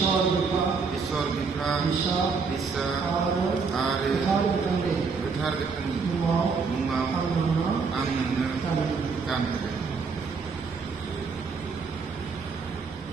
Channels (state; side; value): quieter; left; 5.0 dB